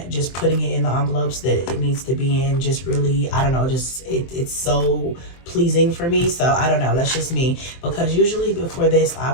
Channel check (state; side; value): late; right; 23 ms